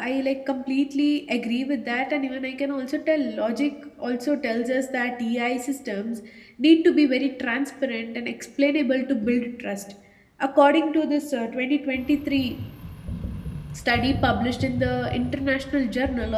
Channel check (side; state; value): both; identical; correlation 1.00